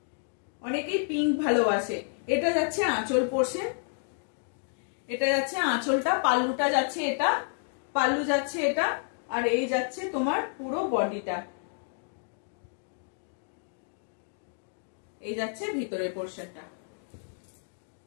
অনেকেই পিঙ্ক ভালোবাসে। এটা যাচ্ছে আঁচল পোর্শন, এটা যাচ্ছে আঁচলটা, পাল্লুটা যাচ্ছে এটা, পাল্লু যাচ্ছে এটা, আর এই যাচ্ছে তোমার পুরো বডিটা, এই যাচ্ছে ভিতরের পোর্শনটা।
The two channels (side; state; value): right; silent; 57 dB below the other